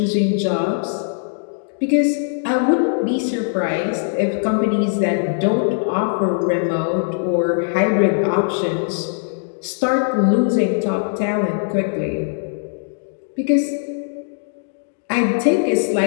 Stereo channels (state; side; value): silent; right; digital silence